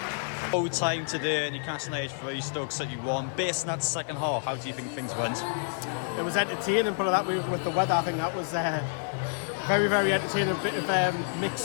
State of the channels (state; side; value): silent; right; digital silence